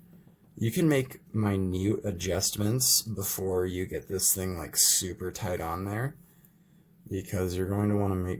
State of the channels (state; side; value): identical; both; correlation 1.00